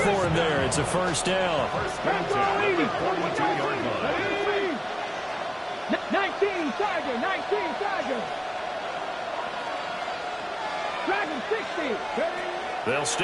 him there. It's a first down. 19, Tiger, 19, Tiger. Dragon 60. They'll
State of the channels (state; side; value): identical; both; correlation 1.00